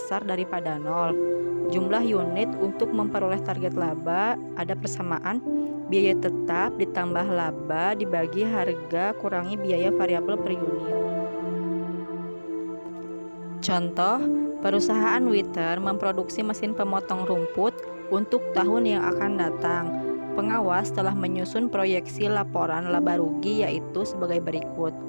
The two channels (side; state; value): both; inverted; correlation -1.00